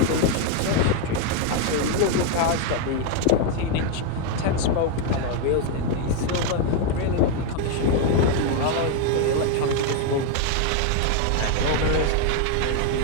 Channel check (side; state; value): both; different; correlation 0.01